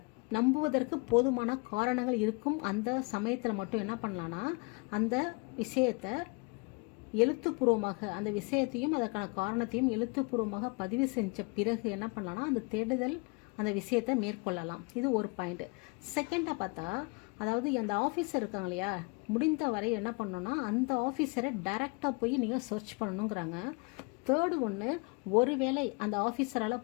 நம்புவதற்கு போதுமான காரணங்கள் இருக்கும் அந்த சமயத்தில் மட்டும் என்ன பண்ணலான்னா, அந்த விஷயத்தை எழுத்துப்பூர்வமாக அந்த விஷயத்தையும் அதற்கான காரணத்தையும் எழுத்துப்பூர்வமாக பதிவு செஞ்ச பிறகு என்ன பண்ணலான்னா, அந்த தேடுதல் அந்த விஷயத்தை மேற்கொள்ளலாம். இது ஒரு பாயிண்ட்டு. செகண்டாக பார்த்தா, அதாவது அந்த ஆஃபீஸர் இருக்காங்க இல்லையா, முடிந்த வரை என்ன பண்ணணும்னா அந்த ஆஃபீஸரை டைரெக்டாக போய் நீங்கள் சர்ச் பண்ணணுங்கிறாங்க. தேர்டு ஒன்று, ஒருவேளை அந்த ஆஃபீஸரால்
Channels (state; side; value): quieter; right; 30.3 dB